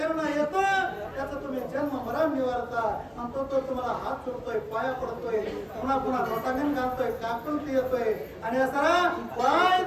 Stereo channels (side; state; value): both; identical; correlation 1.00